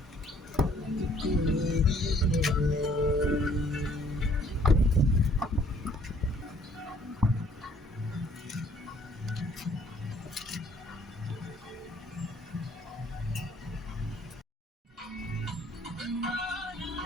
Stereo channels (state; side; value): normal; both; correlation 0.61